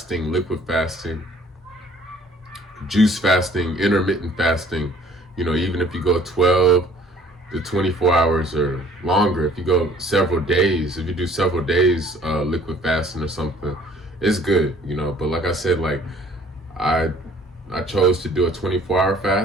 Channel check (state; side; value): normal; both; correlation 0.56